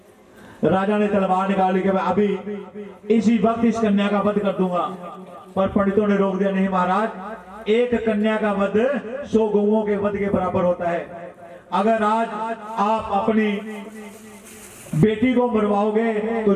राजा ने तलवार निकाली कि मैं अभी इसी वक्त इस कन्या का वध कर दूंगा, पर पंडितों ने रोक दिया, नहीं महाराज एक कन्या का वध 100 गौओं के वध के बराबर होता है। अगर आज आप अपनी बेटी को मरवाओगे तो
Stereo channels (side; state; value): both; identical; correlation 1.00